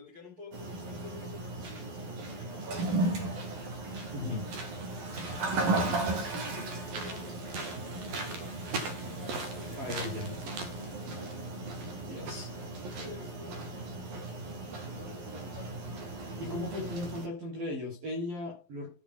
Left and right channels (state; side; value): late; left; 11 ms